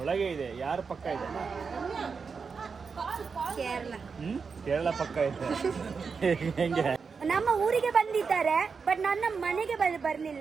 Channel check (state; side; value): quieter; left; 5.4 dB